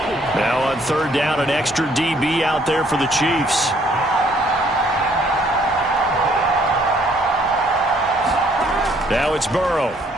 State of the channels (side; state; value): both; normal; correlation 0.64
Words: Now on 3rd down, an extra DB out there for the Chiefs. Now it's Burrow.